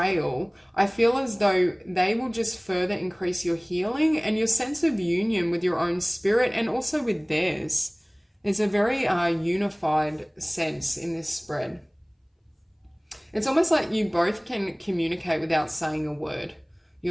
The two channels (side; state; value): both; identical; correlation 1.00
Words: I feel as though they will just further increase your healing and your sense of union with your own spirit and also with theirs. It's a very unified sense in this spread. It's almost like you both can communicate without saying a word.